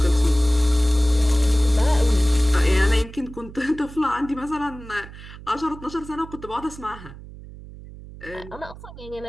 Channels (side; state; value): right; noise; hum, 16 dB below the sound